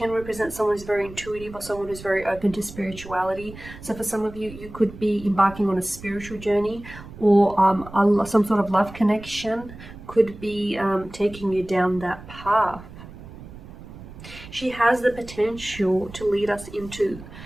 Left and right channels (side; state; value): right; noise; rumble, 16 dB below the sound